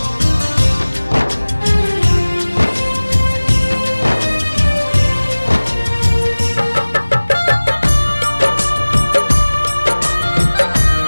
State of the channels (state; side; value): inverted; both; correlation -1.00